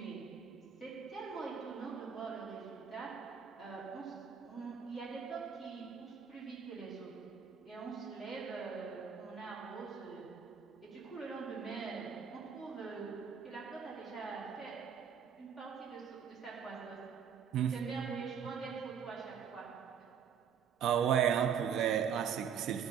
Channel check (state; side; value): quieter; left; 7.4 dB